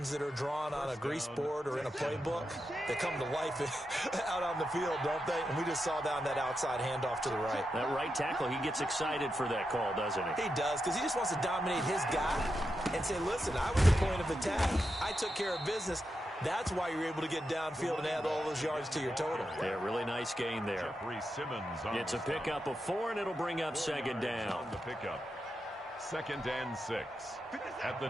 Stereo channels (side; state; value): both; normal; correlation 0.87